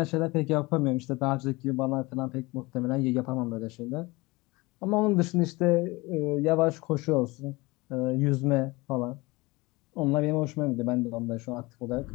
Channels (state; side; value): quieter; right; 23.1 dB